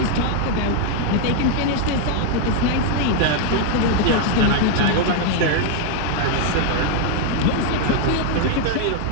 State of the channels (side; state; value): both; different; correlation 0.00